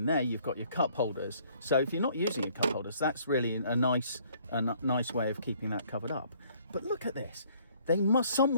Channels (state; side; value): inverted; both; correlation -0.61